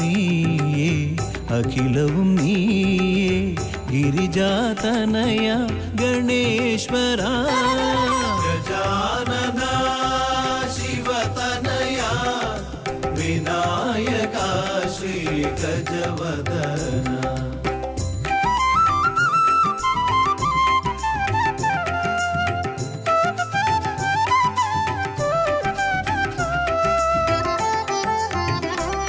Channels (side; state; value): both; identical; correlation 1.00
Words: അഖിലവും നീയേ ഗിരിജാതനയ ഗണേശ്വര ഗജാനന ശിവതനയ വിനായക ശ്രീ ഗജവദന